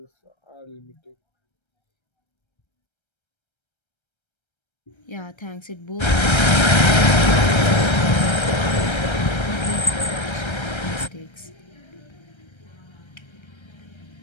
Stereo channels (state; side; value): late; right; 1.3 ms